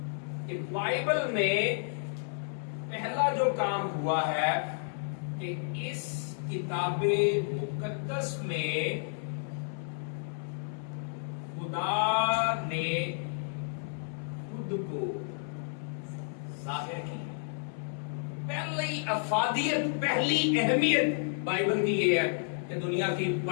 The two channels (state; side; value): silent; right; 57 dB below the other